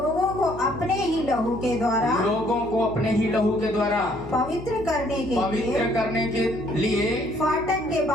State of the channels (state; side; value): noise; left; hum, 16 dB below the sound